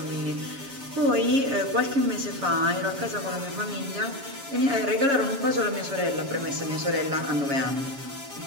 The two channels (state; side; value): late; left; 7.3 ms